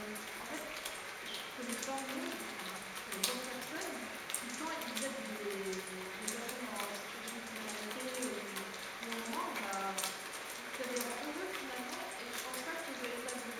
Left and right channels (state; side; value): identical; both; correlation 1.00